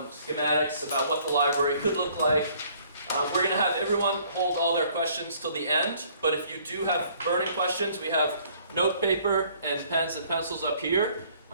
schematics about what the library could look like. We're going to have everyone hold all their questions till the end, but if you do have burning questions, we have note paper and pens and pencils up here,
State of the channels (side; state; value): both; inverted; correlation -0.59